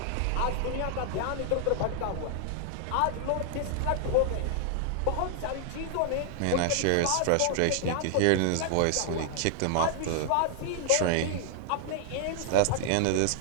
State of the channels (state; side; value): different; both; correlation 0.00